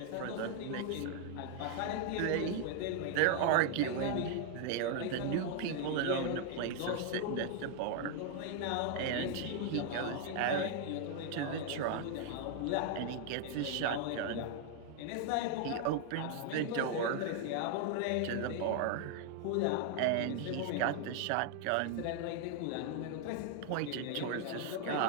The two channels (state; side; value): different; both; correlation 0.00